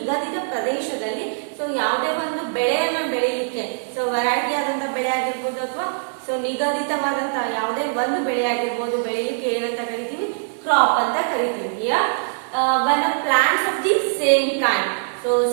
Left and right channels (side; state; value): left; silent; digital silence